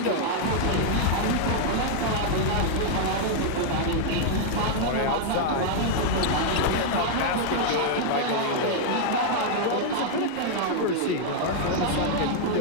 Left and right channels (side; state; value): both; different; correlation -0.01